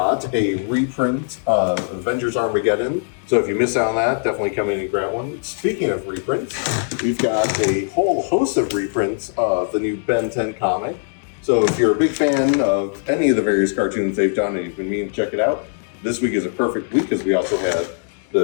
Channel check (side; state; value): right; silent; digital silence